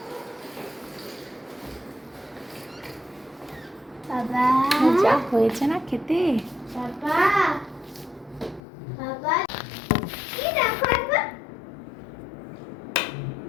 বাবা যা হয়েছে না খেতে। বাবা বাবা কি দেখো একবার,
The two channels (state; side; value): drops out; right; at 8.6 s